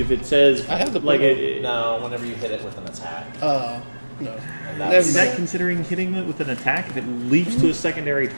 it says I have the like button. it. No, whenever you hit it with an attack. No. And Never that's, Is that mind. considering hitting it with an attack if it leaps to a secondary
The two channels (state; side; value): inverted; both; correlation -1.00